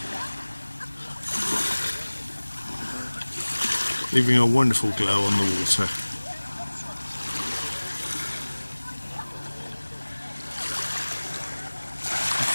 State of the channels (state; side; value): inverted; both; correlation -1.00